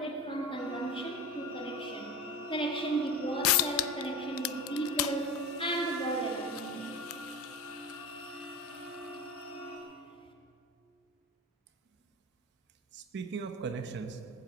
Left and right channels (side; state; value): both; normal; correlation 0.30